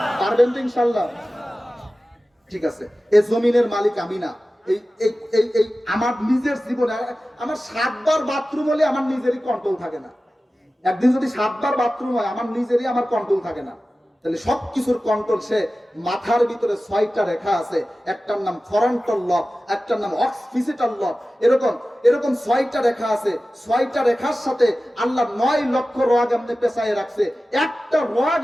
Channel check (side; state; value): both; normal; correlation 0.95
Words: পারবেন তো ইনশাআল্লাহ? ঠিক আছে, এই জমিনের মালিক আমি না, এই আমার নিজের জীবনে আমার 7 বার বাথরুম হলে আমার নিজেরই কন্ট্রোল থাকে না। একদিন যদি 7 বার বাথরুম হয়, আমার নিজেরই আমার কন্ট্রোল থাকে না। তাহলে সবকিছুর কন্ট্রোল সে, মাথার ভিতরে 6টা রেখা আছে, একটার নাম ফরন্টাল লব, একটার নাম অক্সিপিটাল লব, এরকম 6টা রেখা আছে। 6টা রেখার সাথে আল্লাহ 9 লক্ষ রগ আপনি পেছায় রাখছে। একটা রগ